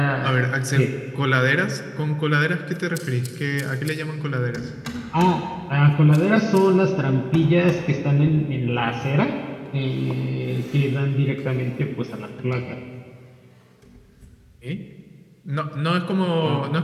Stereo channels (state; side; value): identical; both; correlation 1.00